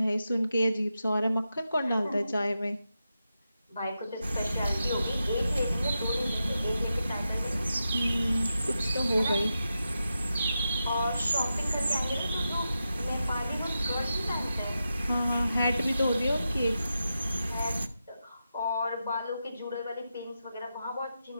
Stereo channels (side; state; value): both; inverted; correlation -0.89